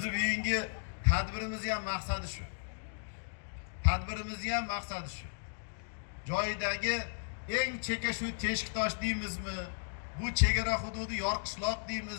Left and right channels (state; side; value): silent; right; digital silence